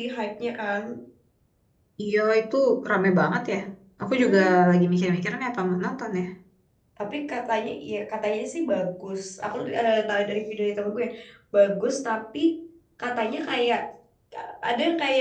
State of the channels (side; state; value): both; identical; correlation 1.00